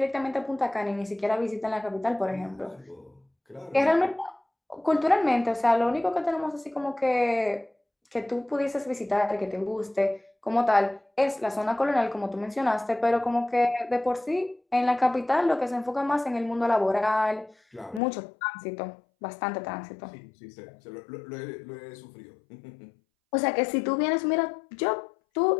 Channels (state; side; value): drops out; right; at 18.0 s